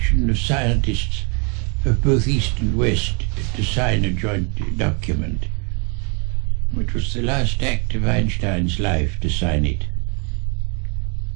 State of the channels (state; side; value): quieter; left; 35.1 dB